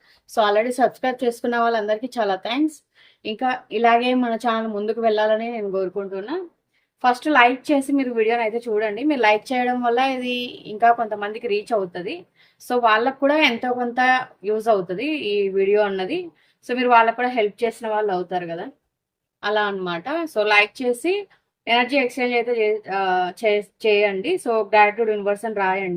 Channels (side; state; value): both; identical; correlation 1.00